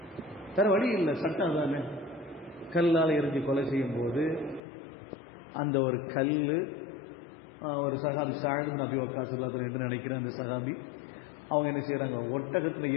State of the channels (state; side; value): drops out; right; at 4.6 s